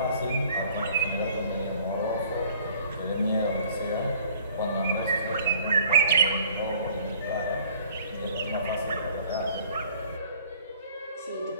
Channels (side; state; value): both; inverted; correlation -0.54